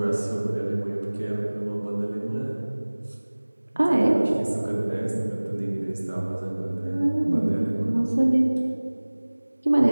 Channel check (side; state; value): both; inverted; correlation -1.00